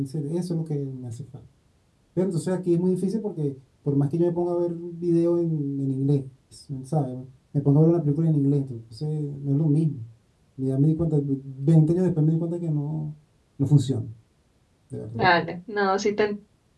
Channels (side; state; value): both; identical; correlation 1.00